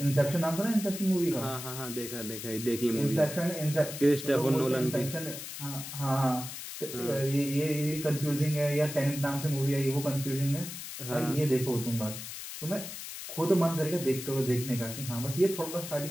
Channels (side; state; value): left; noise; hiss, 9 dB below the sound